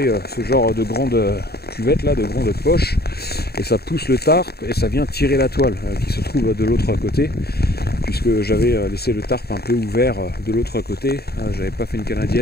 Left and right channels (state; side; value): late; right; 0.46 ms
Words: ce genre de grande cuvette là, de grande poche, et ça pousse le tarp et ça vient tirer la toile qui se trouve de l'autre côté, puisque j'avais laissé le tarp un peu ouvert de l'autre côté. J'avais pas fait une